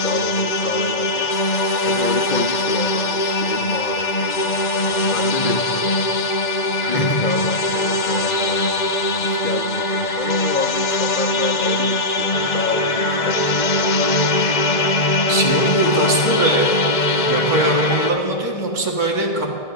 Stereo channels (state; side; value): late; right; 2.0 ms